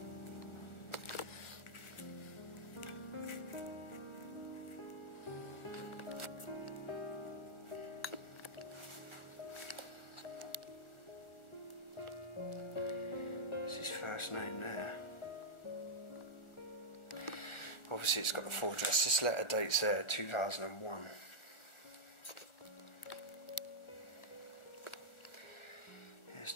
First name there. Obviously it's got the full address. This letter dates there 2001. This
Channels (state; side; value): late; right; 1.4 ms